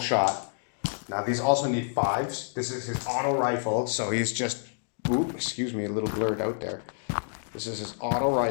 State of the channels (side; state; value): right; silent; digital silence